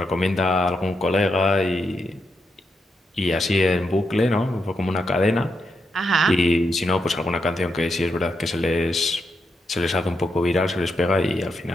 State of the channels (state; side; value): normal; both; correlation 0.83